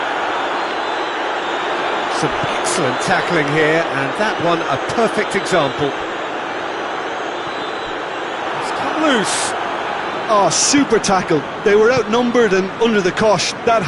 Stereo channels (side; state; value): both; identical; correlation 1.00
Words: Some excellent tackling here, and that one a perfect example. It's come loose. Oh, super tackle. They were outnumbered and under the cosh. That